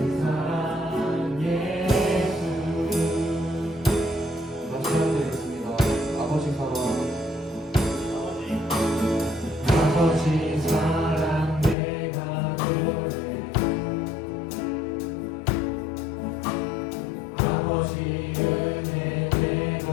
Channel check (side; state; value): right; drops out; at 11.8 s